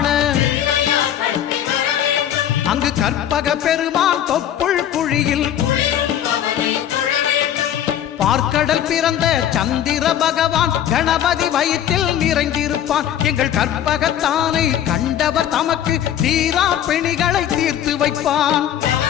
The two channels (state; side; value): quieter; right; 10.6 dB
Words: அங்கு கற்பக பெருமான் தொப்புள் குழியில் பார்க்கடல் பிறந்த சந்திர பகவான் கணபதி வயிற்றில் நிறைந்திருப்பான். எங்கள் கற்பகத்தானை கண்டவர் தமக்கு தீரா பிணிகளை தீர்த்து வைப்பான்.